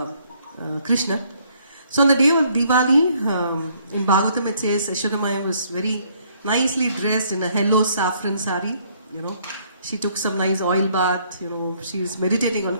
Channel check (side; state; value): both; inverted; correlation -0.66